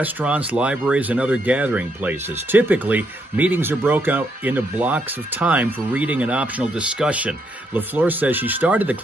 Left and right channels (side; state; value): both; normal; correlation 0.76